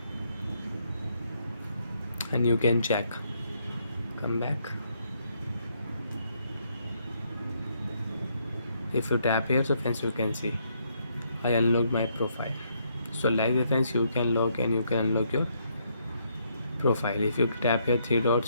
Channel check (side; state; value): both; inverted; correlation -0.73